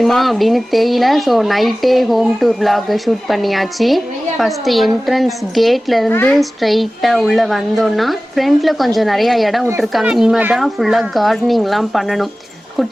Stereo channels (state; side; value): normal; both; correlation 0.97